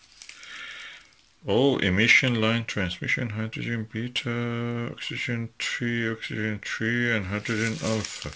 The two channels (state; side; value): identical; both; correlation 1.00